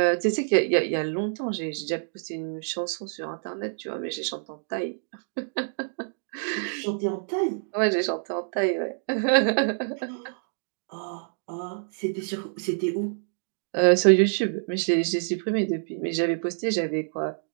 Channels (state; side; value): silent; left; digital silence